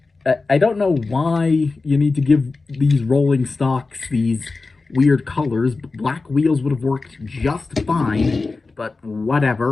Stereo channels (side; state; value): right; quieter; 3.8 dB